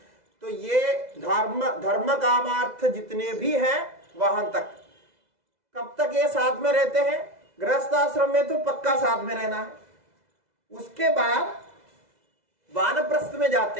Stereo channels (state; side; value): late; left; 2.0 ms